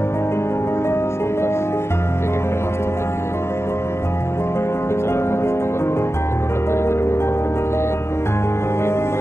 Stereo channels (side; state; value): right; late; 0.13 ms